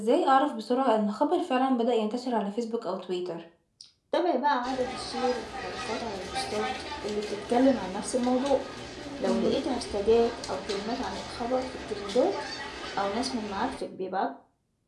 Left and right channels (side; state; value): both; identical; correlation 1.00